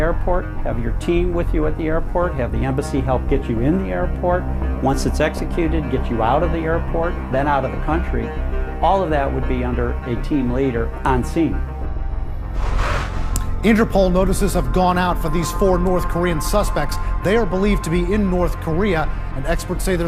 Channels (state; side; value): identical; both; correlation 1.00